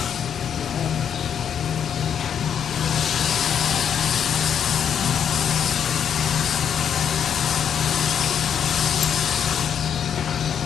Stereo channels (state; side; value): quieter; right; 8.3 dB